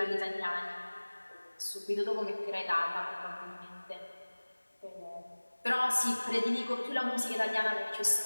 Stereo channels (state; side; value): inverted; both; correlation -1.00